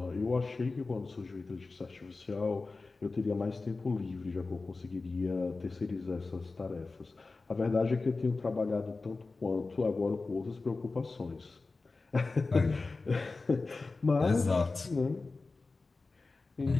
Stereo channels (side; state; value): right; quieter; 3.7 dB